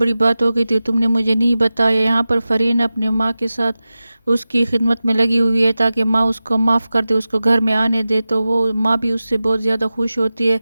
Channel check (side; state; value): both; inverted; correlation -0.95